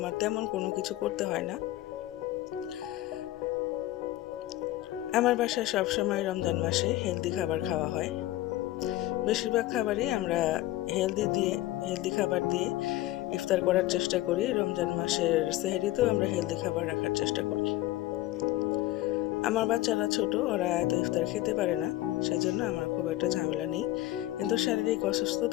তেমন কোনো কিছু করতে হয় না। আমার বাসায় সবসময় রমজান মাসে হেলদি খাবার খাওয়া হয়। বেশিরভাগ খাবারই আমরা হেলদি খাবার দিয়ে ইফতার করার চেষ্টা করি। রমজান মাসের সেহরিতেও আমরা হেলদি খাবার রাখার চেষ্টা করি। আমার বাচ্চারা ছোট, ওরা এত ইফতার খেতে পারে না, সেজন্য আমার খুব একটা ঝামেলা নেই। কিন্তু শারীরিক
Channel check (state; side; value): quieter; right; 16.0 dB